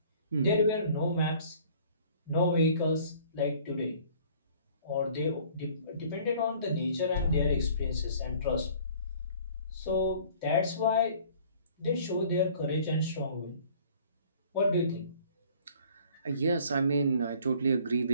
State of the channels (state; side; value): inverted; both; correlation -0.53